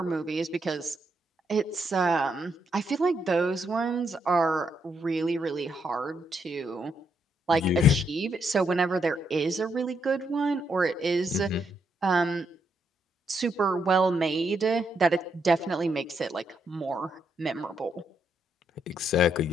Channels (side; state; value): both; normal; correlation 0.77